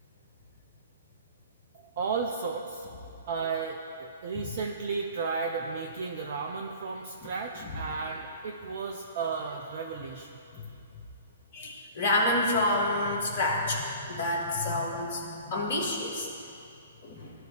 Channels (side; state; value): both; inverted; correlation -0.42